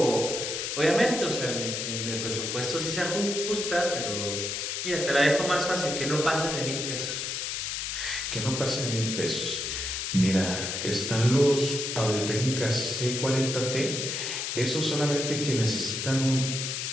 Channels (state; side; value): noise; left; hiss, 3 dB below the sound